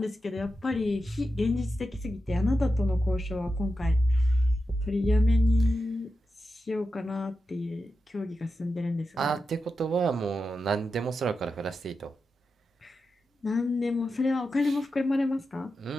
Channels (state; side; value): normal; both; correlation 0.90